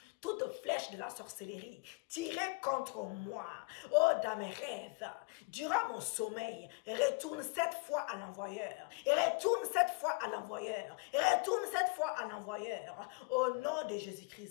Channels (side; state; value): right; quieter; 29.7 dB